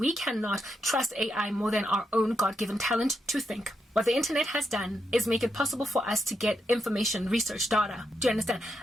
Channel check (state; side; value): normal; both; correlation 0.83